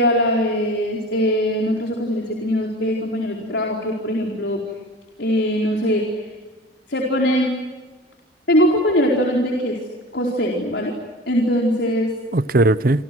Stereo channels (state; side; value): normal; both; correlation 0.39